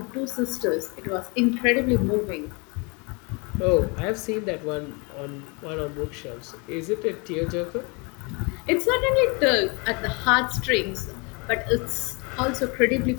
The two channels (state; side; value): quieter; right; 30.5 dB